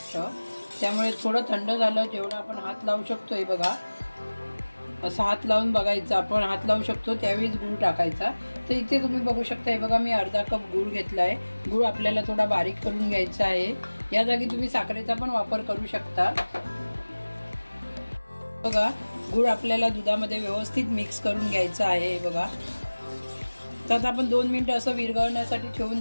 त्यामुळे थोडं थंड झालं जेवढं आपण हात लावू शकतो, हे बघा असं हात लावून बघायचं, आपण हात लावू शकतो त्यावेळीच गूळ टाकायचा. तर इथे तुम्ही बघू शकता, हे बघा मी अर्धा कप गूळ घेतला आहे. गूळ आपल्याला थोडा बारीक करून घ्यायचा आहे. या जागी तुम्ही साखरेचा पण वापर करू शकता. बघा गूळ आपल्याला दुधामध्ये व्यवस्थित मिक्स करून घ्यायचं आहे. हे बघा तर आपण 2 मिनिटं असं विरघळण्यासाठी ठेवून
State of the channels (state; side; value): inverted; both; correlation -1.00